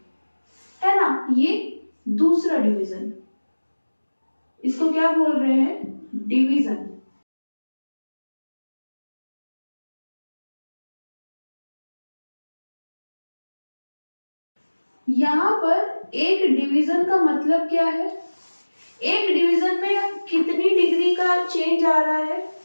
है ना। ये दूसरा डिवीजन, इसको क्या बोल रहे हैं? डिवीजन। यहाँ पर एक डिवीजन का मतलब क्या है? एक डिवीजन में कितनी डिग्री का चेंज आ रहा है?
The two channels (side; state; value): both; inverted; correlation -1.00